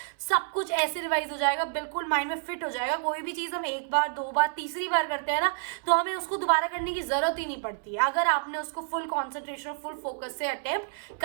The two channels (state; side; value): silent; left; 59 dB below the other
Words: सब कुछ ऐसे रिवाइज हो जाएगा, बिल्कुल माइंड में फिट हो जाएगा। कोई भी चीज़ हम एक बार, 2 बार, तीसरी बार करते हैं ना, तो हमें उसको दोबारा करने की जरूरत ही नहीं पड़ती है अगर आपने उसको फुल कॉन्सेंट्रेशन और फुल फोकस से अटेम्प्ट